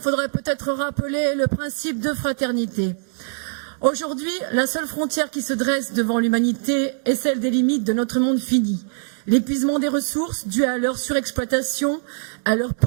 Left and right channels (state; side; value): silent; left; digital silence